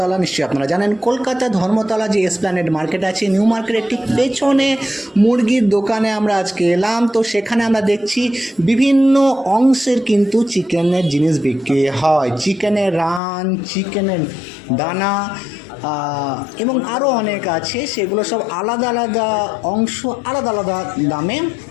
নিশ্চয়ই আপনারা জানেন কলকাতা ধর্মতলা যে এসপ্ল্যানেড মার্কেট আছে, নিউ মার্কেটের ঠিক পেছনে মুরগির দোকানে আমরা আজকে এলাম। তো সেখানে আমরা দেখছি বিভিন্ন অংশের কিন্তু চিকেনের জিনিস বিক্রি হয়, চিকেনের রান, চিকেনের দানা এবং আরও অনেক আছে। সেগুলো সব আলাদা আলাদা অংশ, আলাদা আলাদা দামে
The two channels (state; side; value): drops out; right; at 13.2 s